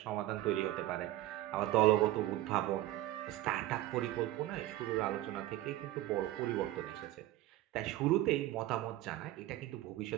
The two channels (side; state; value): left; quieter; 15.3 dB